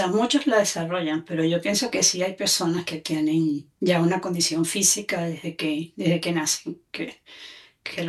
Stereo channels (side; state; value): both; identical; correlation 1.00